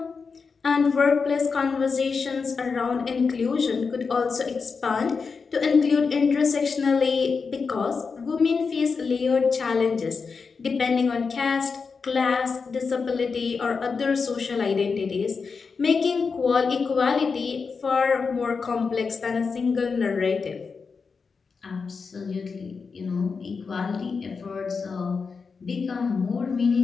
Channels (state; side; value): quieter; right; 5.1 dB